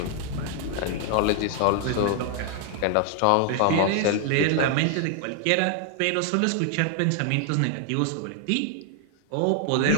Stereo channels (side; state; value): both; different; correlation 0.00